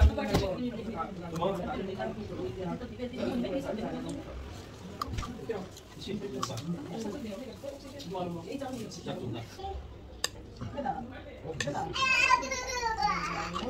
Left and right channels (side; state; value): both; identical; correlation 1.00